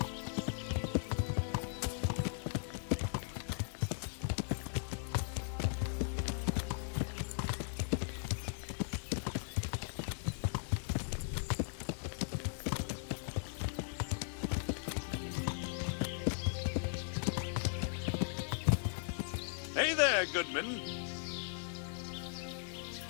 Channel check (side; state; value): right; silent; digital silence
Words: Hey there, Goodman.